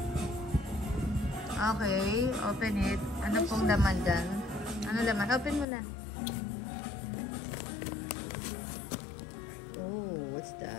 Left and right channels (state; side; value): drops out; right; at 5.7 s